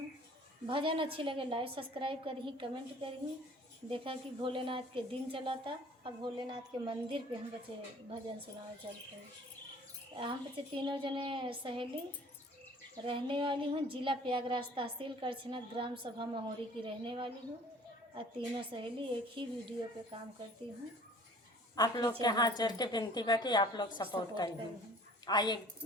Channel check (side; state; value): both; normal; correlation 0.50